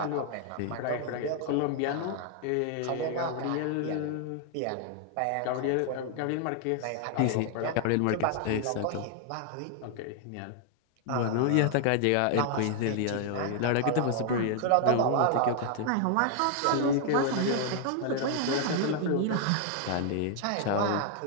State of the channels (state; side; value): different; both; correlation 0.00